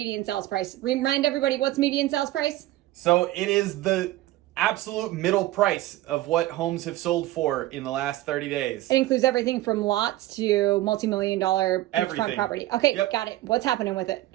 sales price. Remind everybody, what's median sales price? So it is the absolute middle price of what homes have sold for in the last 30 days. It includes everything from lots to multi-million-dollar beachfront property. Okay, Yep. Got it. What's happening with it?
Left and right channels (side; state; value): left; quieter; 16.2 dB